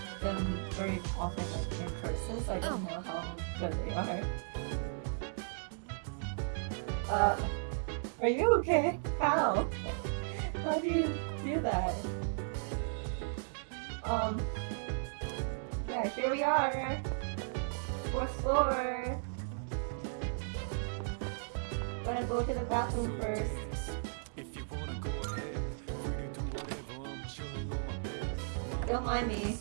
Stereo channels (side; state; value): left; silent; digital silence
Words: them very often like, in person, so I don't know how good they are. Are you okay? How? How do you do that? Yeah, here we are. 4th floor. Gonna go to the bathroom first. If you wanna go ahead, free to do whatever. I'm chilling on my bed. Don't mind me.